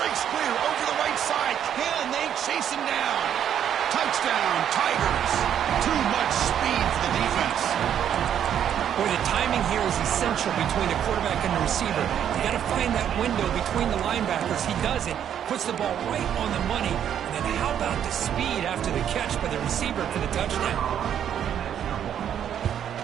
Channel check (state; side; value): quieter; left; 9.5 dB